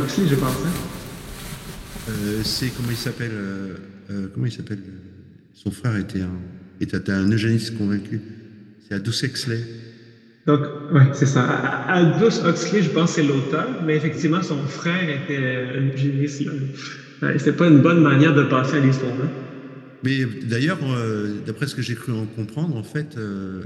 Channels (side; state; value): both; identical; correlation 1.00